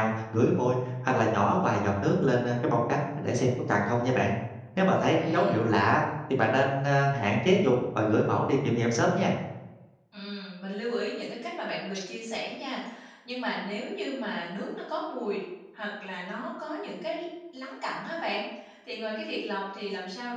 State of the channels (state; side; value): identical; both; correlation 1.00